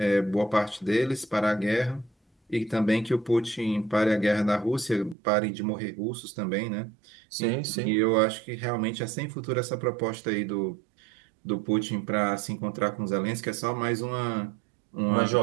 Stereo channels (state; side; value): drops out; left; at 5.2 s